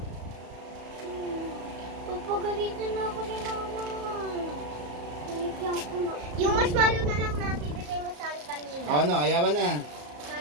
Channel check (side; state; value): left; late; 34 ms